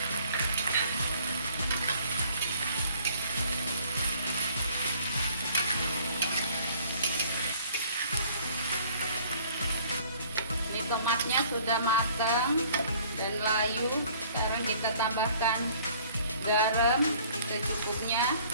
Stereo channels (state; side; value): inverted; both; correlation -0.56